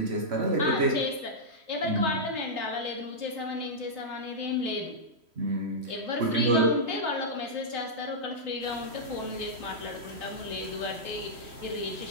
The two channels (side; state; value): left; late; 3.1 ms